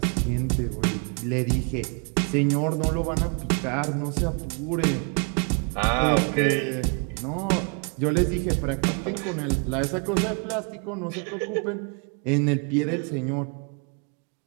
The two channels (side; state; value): left; quieter; 36.9 dB